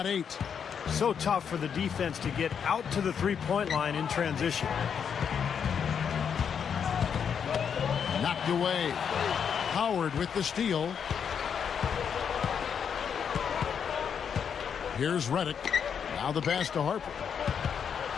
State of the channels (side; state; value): right; quieter; 7.3 dB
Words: 8. So tough for the defense to get out to the three-point line in transition. Knocked away. Howard with the steal. Here's Reddick. Now the pass to Harper.